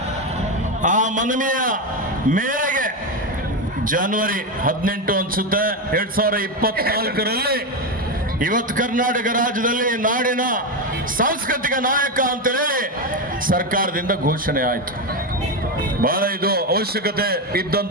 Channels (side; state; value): both; normal; correlation 0.12